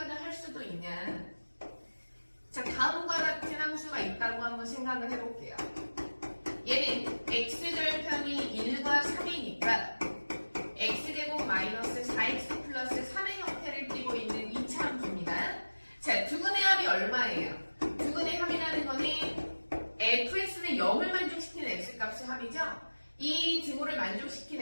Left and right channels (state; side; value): inverted; both; correlation -1.00